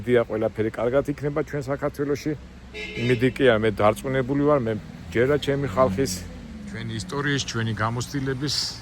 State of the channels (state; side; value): identical; both; correlation 1.00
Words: ყველაფერი კარგად იქნება ჩვენ საქართველოში იმედი კი არ მე დარწმუნებული ვარ მე ჯერა ჩემი ხალხის ჩვენი ისტორიის ჩვენი გამოცდილების